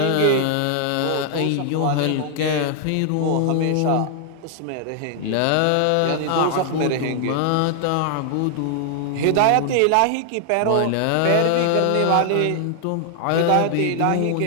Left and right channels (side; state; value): both; different; correlation 0.00